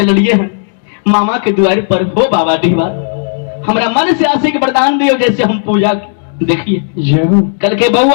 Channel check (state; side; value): silent; right; digital silence